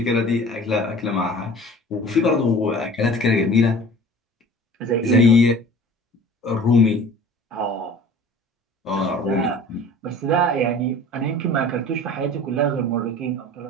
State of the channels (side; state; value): both; normal; correlation 0.44